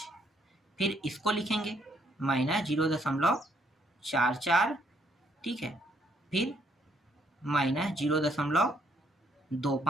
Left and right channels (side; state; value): both; normal; correlation 0.70